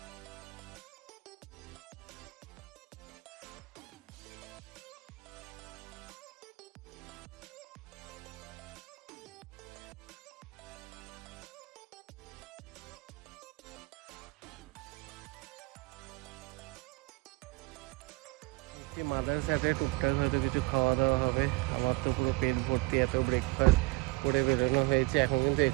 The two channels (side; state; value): left; quieter; 23.2 dB